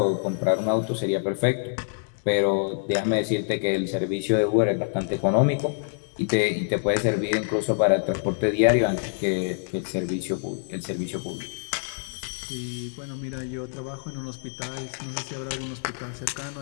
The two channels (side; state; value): right; silent; digital silence